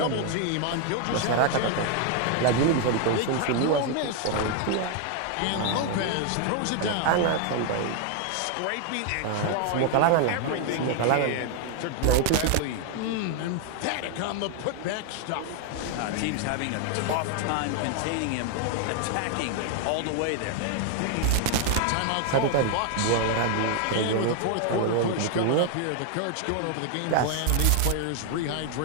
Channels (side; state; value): both; different; correlation 0.00